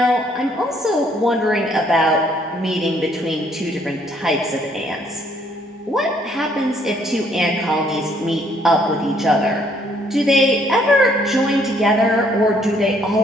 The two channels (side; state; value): both; normal; correlation 0.66